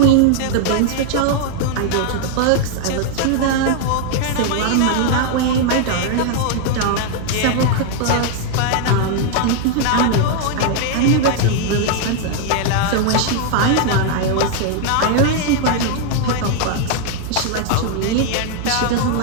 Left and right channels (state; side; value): different; both; correlation 0.00